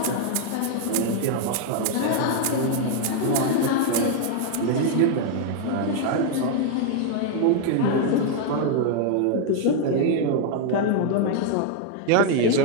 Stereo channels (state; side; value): different; both; correlation 0.00